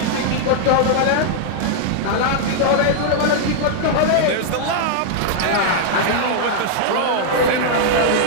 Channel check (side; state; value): both; different; correlation -0.01